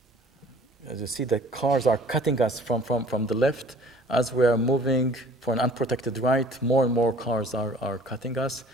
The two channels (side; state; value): both; normal; correlation 0.51